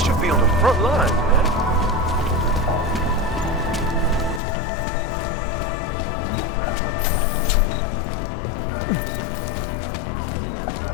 be on the front line, man.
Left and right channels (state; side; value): drops out; right; at 4.4 s